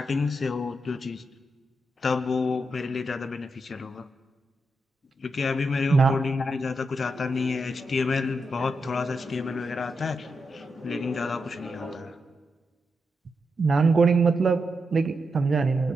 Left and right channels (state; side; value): normal; both; correlation 0.85